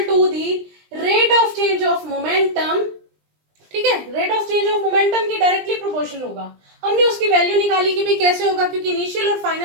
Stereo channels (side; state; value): left; late; 20 ms